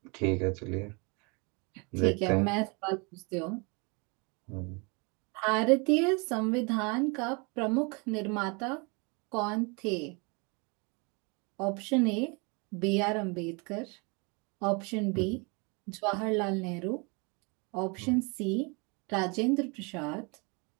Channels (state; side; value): quieter; left; 30.8 dB